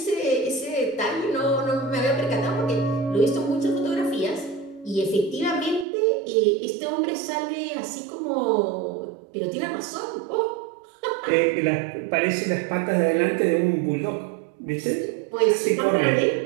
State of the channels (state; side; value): drops out; left; at 5.9 s